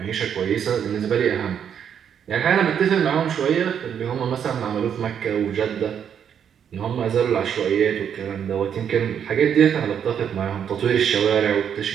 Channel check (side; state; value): left; quieter; 8.3 dB